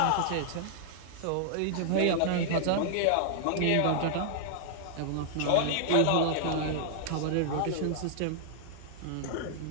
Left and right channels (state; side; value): different; both; correlation -0.01